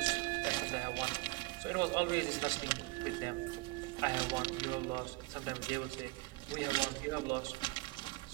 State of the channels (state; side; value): quieter; left; 21.7 dB